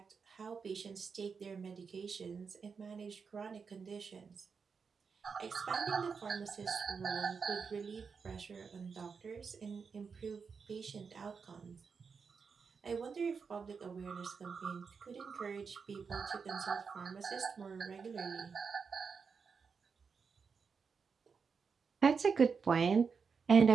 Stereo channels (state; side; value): quieter; left; 5.6 dB